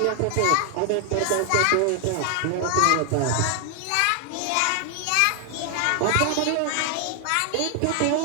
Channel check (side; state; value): both; different; correlation 0.00